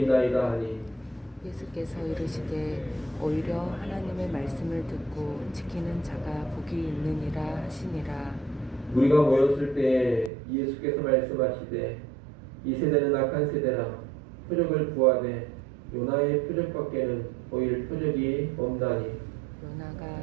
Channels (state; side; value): drops out; left; at 10.3 s